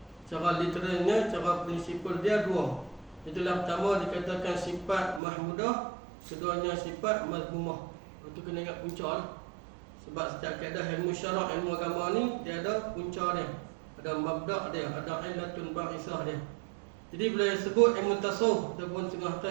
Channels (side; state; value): left; drops out; at 5.2 s